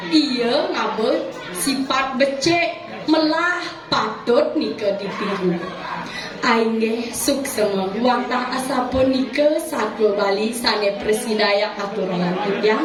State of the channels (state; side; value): identical; both; correlation 1.00